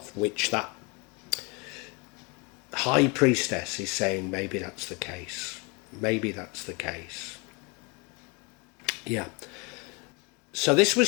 which that high priestess is saying maybe that's the case. Maybe that's the case. Yeah. So this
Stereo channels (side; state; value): right; quieter; 29.2 dB